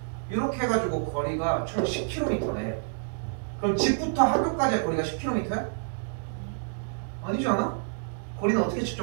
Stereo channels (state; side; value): silent; left; digital silence